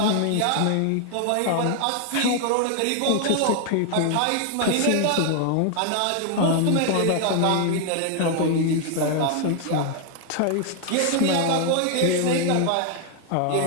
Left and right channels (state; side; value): different; both; correlation 0.00